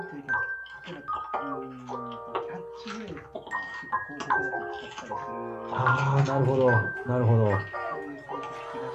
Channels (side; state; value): both; identical; correlation 1.00